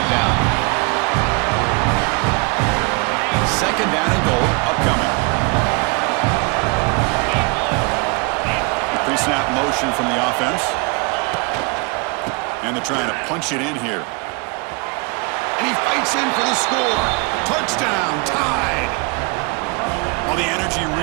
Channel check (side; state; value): left; quieter; 30.3 dB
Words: down. Second down and goal upcoming. Pre-snap motion from the offense. And they're trying to punch it in here. And he fights in for the score. Touchdown, tied. Well, the energy